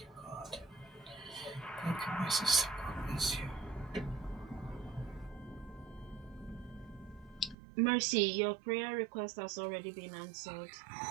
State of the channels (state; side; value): drops out; left; at 7.6 s